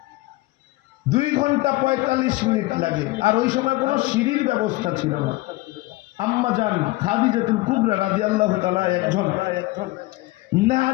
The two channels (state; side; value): quieter; right; 19.9 dB